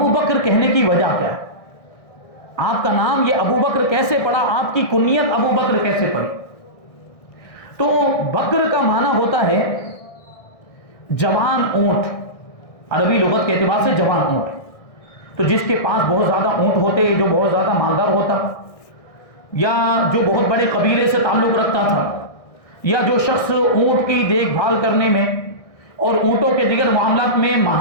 بکر کہنے کی وجہ کیا ہے؟ آپ کا نام یہ ابو بکر کیسے پڑا؟ آپ کی کنیت ابو بکر کیسے پڑی؟ تو بکر کا معنی ہوتا ہے جوان اونٹ، عربی لغت کے اعتبار سے جوان اونٹ۔ تو جس کے پاس بہت زیادہ اونٹ ہوتے، جو بہت زیادہ مالدار ہوتا، یا جو بہت بڑے قبیلے سے تعلق رکھتا تھا، یا جو شخص اونٹ کی دیکھ بھال کرنے میں اور اونٹوں کے دیگر معاملات میں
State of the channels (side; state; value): right; late; 1.6 ms